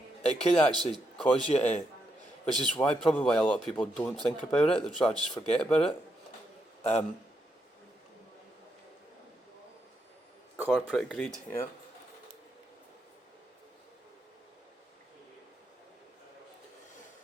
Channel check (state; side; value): normal; both; correlation 0.81